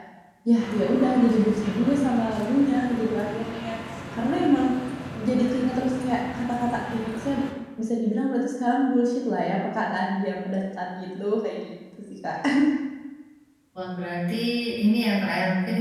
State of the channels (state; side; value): identical; both; correlation 1.00